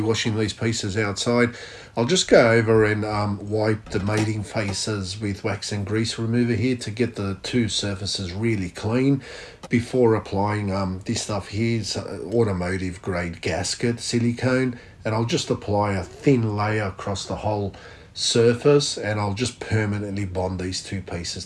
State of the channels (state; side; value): identical; both; correlation 1.00